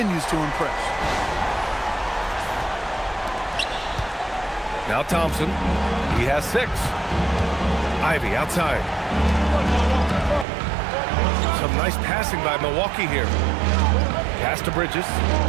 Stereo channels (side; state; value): left; drops out; at 10.5 s